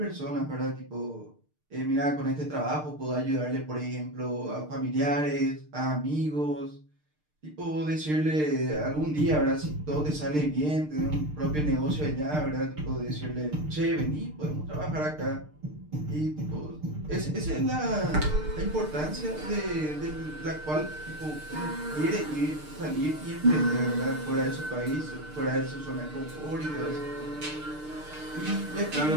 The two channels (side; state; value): left; late; 6.6 ms